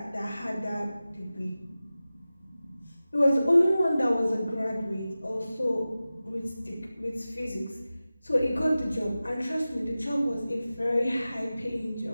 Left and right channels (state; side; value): inverted; both; correlation -0.96